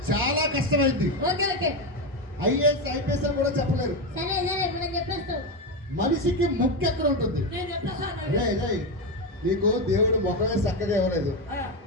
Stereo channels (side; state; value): both; normal; correlation 0.12